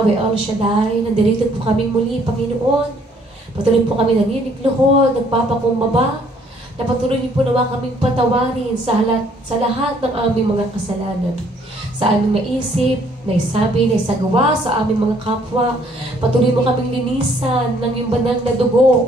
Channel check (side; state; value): both; normal; correlation 0.63